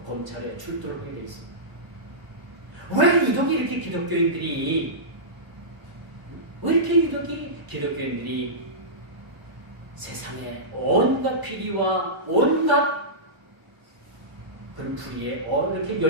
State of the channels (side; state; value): left; late; 1.0 ms